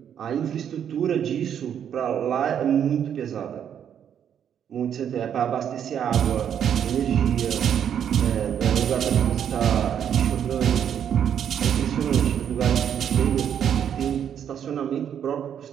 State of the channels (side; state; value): left; quieter; 8.9 dB